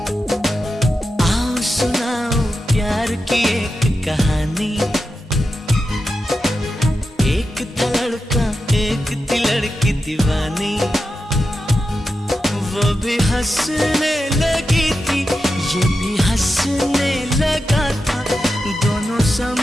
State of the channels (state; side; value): normal; both; correlation 0.90